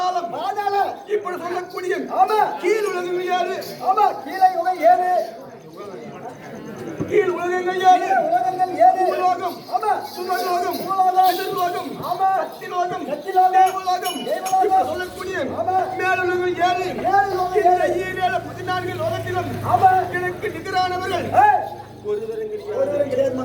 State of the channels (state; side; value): identical; both; correlation 1.00